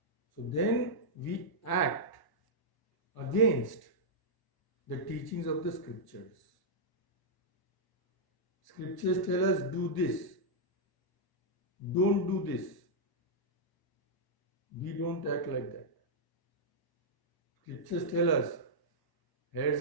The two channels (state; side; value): late; right; 1.0 ms